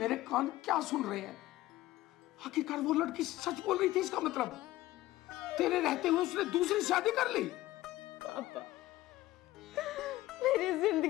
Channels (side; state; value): right; quieter; 16.6 dB